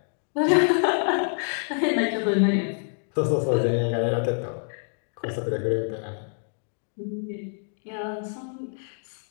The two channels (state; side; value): silent; right; 58 dB below the other